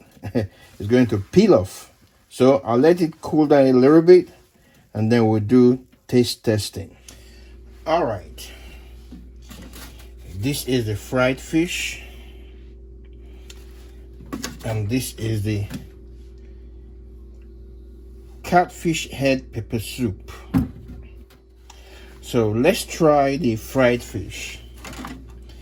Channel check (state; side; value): identical; both; correlation 1.00